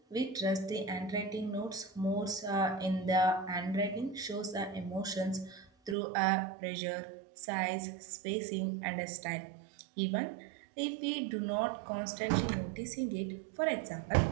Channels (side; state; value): left; drops out; at 6.0 s